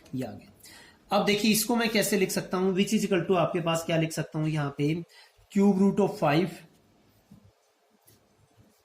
ये आ गया। अब देखिए इसको मैं कैसे लिख सकता हूं, विच इज इक्वल टू आपके पास क्या लिख सकता हूं यहां पे, क्यूब रूट ऑफ 5,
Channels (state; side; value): identical; both; correlation 1.00